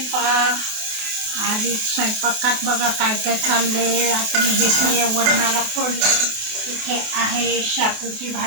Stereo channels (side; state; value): left; late; 28 ms